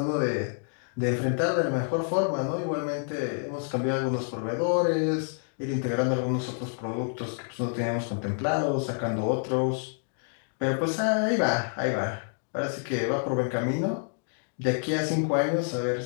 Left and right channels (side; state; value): right; silent; 59 dB below the other